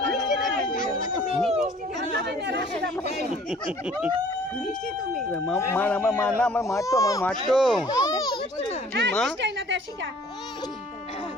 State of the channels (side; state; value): both; normal; correlation 0.53